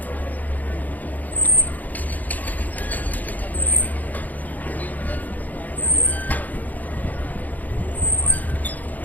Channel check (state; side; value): late; right; 0.081 ms